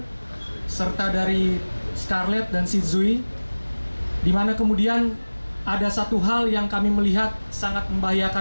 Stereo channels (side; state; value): both; inverted; correlation -1.00